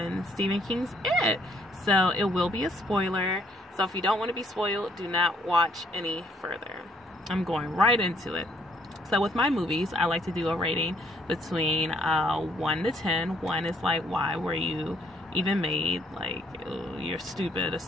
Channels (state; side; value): normal; both; correlation 0.67